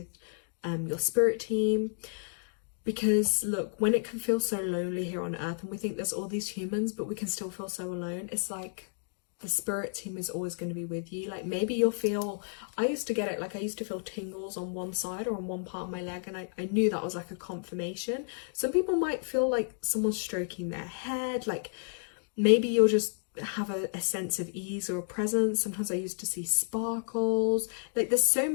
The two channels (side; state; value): right; silent; digital silence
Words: your spirit team. Because look, when it can feel so lonely here on earth and we think there's all these humans but we can still feel so alone, it's like the spirit team is always going to be with you. Like maybe you'll feel, I used to get it, like I used to feel tingles on one side or on one part of my leg, and I knew that was like a confirmation. Some people might feel like someone's stroking their head, like maybe you'll just have a sense of ease or a presence. Sometimes I used to see sparkles. Like there's so